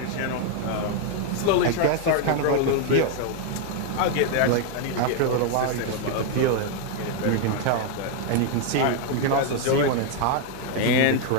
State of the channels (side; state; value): both; different; correlation 0.01